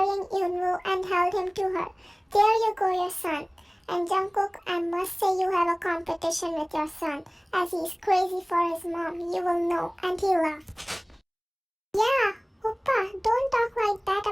Yoonwoo and held him to her. There you go, your son. And Jungkook, I must say you have a competition with your son, as he's crazy for his mom, you will know. And he laughed. Yeah, Oppa, don't talk like that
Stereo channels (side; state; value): both; identical; correlation 1.00